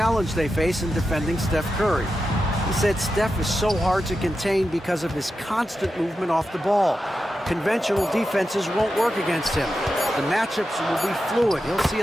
they face in defending Steph Curry. He said Steph is so hard to contain because of his constant movement off the ball. Conventional defenses won't work against him. The matchups will be fluid. He'll see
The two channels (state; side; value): normal; both; correlation 0.90